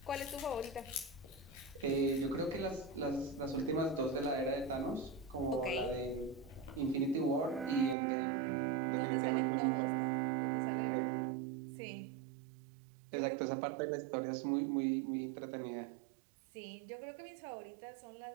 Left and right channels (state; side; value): drops out; left; at 8.0 s